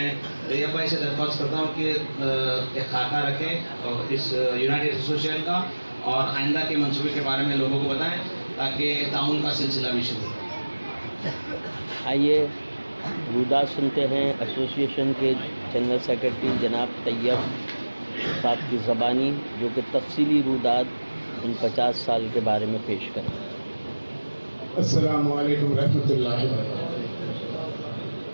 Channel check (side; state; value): both; inverted; correlation -1.00